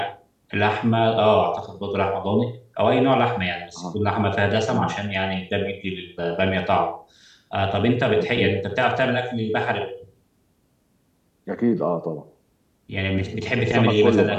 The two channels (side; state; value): both; identical; correlation 1.00